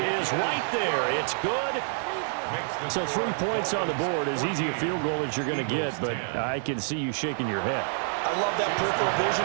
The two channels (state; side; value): silent; left; 60 dB below the other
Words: right there. It's good. So 3 points on the board, as easy a field goal as you're going to get, but I can see you shaking your head. I love that peripheral vision